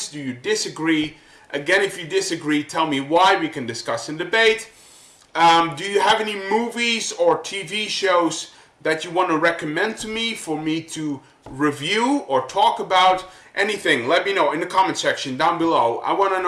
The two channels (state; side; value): identical; both; correlation 1.00